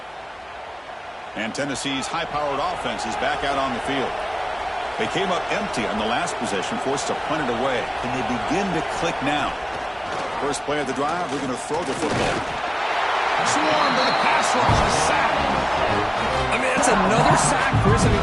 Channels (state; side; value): identical; both; correlation 1.00